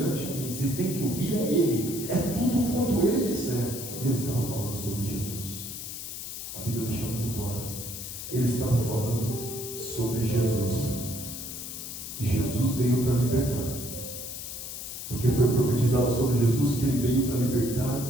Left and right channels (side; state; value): left; noise; hiss, 8 dB below the sound